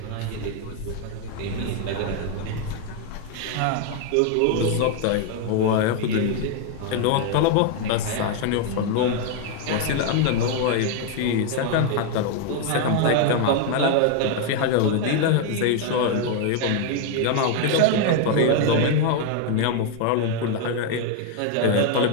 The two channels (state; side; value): different; both; correlation 0.00